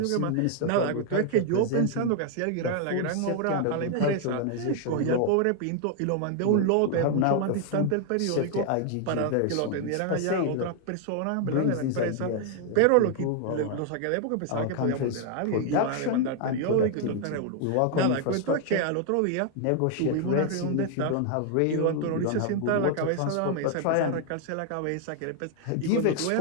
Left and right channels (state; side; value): different; both; correlation 0.00